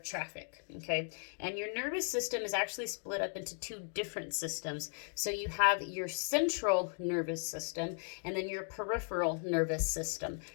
traffic, okay? And your nervous system is actually split up into two different systems. So you have your central nervous system and then your peripheral nervous system.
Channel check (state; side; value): silent; right; 53 dB below the other